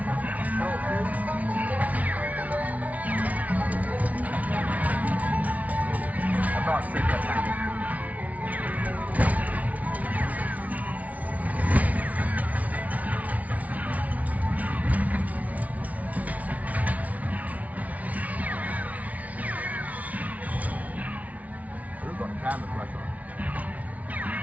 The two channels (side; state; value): left; late; 0.070 ms